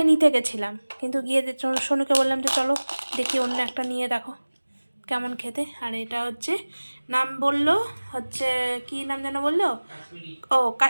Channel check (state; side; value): inverted; both; correlation -1.00